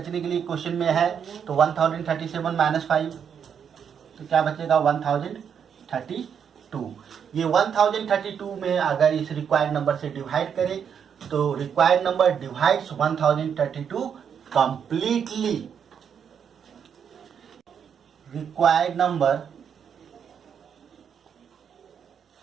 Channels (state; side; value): quieter; left; 7.6 dB